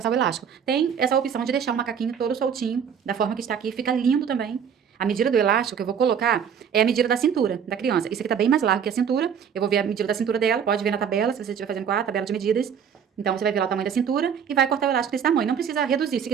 o elástico. Tem essa opção de deixar o macaquinho todo soltinho, da forma que está aqui, fica lindo também. A medida do elástico que eu vou colocar é a medida da cintura da criança. Isso aqui tá bem mais largo que a cintura. Eu vou ver a medida da cintura dela, pode ver na tabela, se você estiver fazendo com a tabela de medidas. Então, você vai ver lá o tamanho da cintura e vai cortar o elástico desse tamanho. Não precisa reduzir. Se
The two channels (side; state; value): left; quieter; 7.6 dB